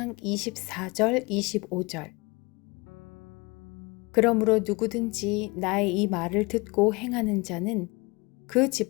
24절 25절 그러므로 누구든지 나의 이 말을 듣고 행하는 자는 그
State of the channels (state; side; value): quieter; right; 25.8 dB